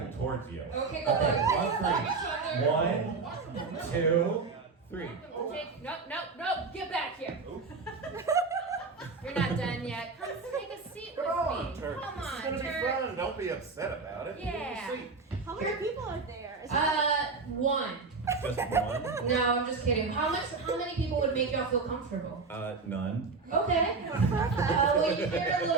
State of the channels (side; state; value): left; quieter; 4.3 dB